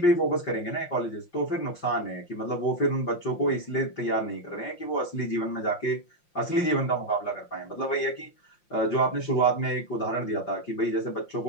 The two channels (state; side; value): late; right; 5.7 ms